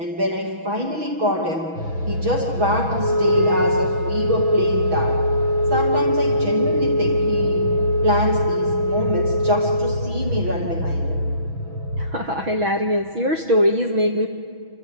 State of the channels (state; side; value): late; left; 6.1 ms